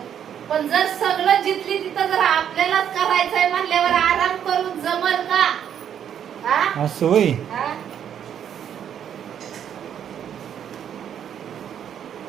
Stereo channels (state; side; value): quieter; left; 9.1 dB